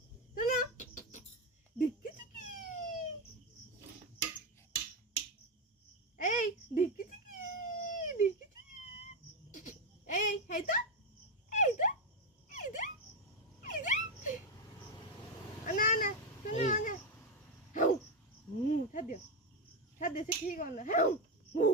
শোনো ডিক্কি চিকি এই ডিক্কি চিকি ডিক্কি চিকি এই তো এই তো এই তো এই তো না না শোনো না হাউ ছাড় দিও সে ঠিক না হাউ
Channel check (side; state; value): both; normal; correlation 0.09